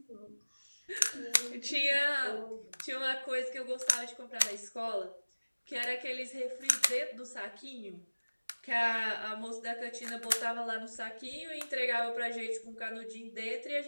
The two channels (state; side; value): inverted; both; correlation -1.00